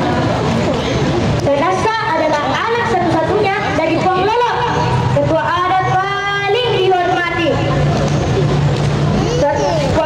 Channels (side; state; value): both; identical; correlation 1.00